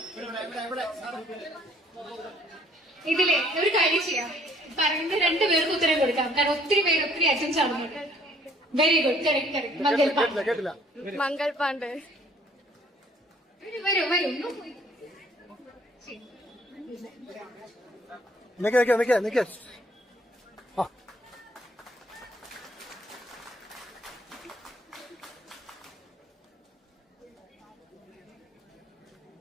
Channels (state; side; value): normal; both; correlation 0.60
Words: ഇതിലെ ഒരു കാര്യം ചെയ്യാം, പറയുന്ന 2 പേർക്ക് ഉത്തരം കൊടുക്കാം, കാരണം ഒത്തിരി പേര് ഒത്തിരി അറ്റൻസ് ആവുന്നുണ്ട്. Very good, correct correct. Mangal Pandey. കേട്ടില്ല. മംഗൾ പാണ്ഡെ. വരൂ വരൂ. നിക്ക്. ആ